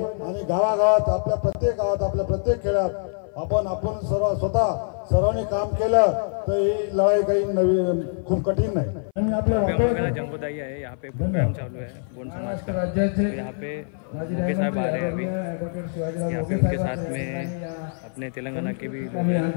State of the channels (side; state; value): right; silent; 56 dB below the other